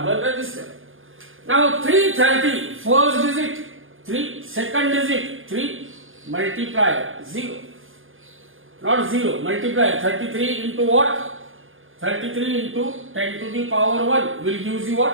resistor. Now 330, first digit 3, second digit 3, multiplier 0. Not 0, multiplier 33 into what? 33 into 10 to the power 1 will give you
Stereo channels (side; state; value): left; late; 0.59 ms